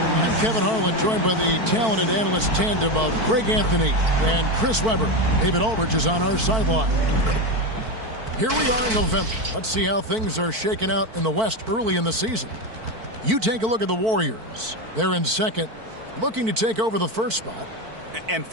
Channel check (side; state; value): left; late; 4.5 ms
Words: Kevin Harlan, joined by the talented analyst tandem of Greg Anthony and Chris Webber. David Aldridge is on our sideline. Here we are in November. Let's see how things are shaking out in the West early in the season. You take a look at the Warriors. They're in second, looking to take over the first spot. And